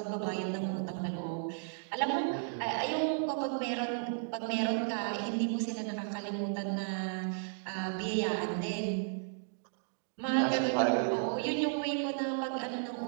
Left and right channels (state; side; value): silent; left; digital silence